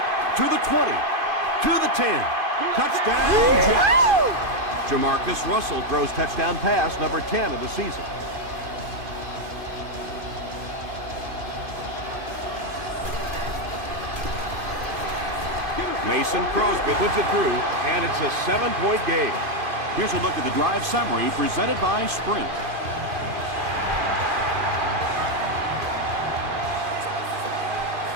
to the 20, to the 10. Touchdown, Jets. Jamarcus Russell throws touchdown pass number 10 of the season. Mason Crosby puts it through, and it's a 7-point game. Here's a look at the drive summary presented by Sprint.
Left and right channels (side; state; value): left; late; 2.4 ms